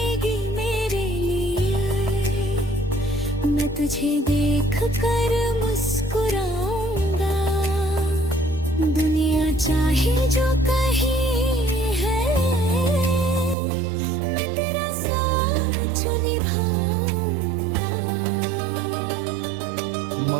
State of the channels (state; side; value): drops out; left; at 13.6 s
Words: मेरे लिए, मैं तुझे देख कर मुस्कुराऊंगा। दुनिया चाहे जो कहे है, मैं तेरा साथ निभाऊंगा।